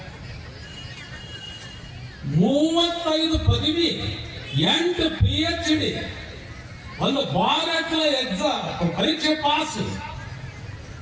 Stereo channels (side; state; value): both; identical; correlation 1.00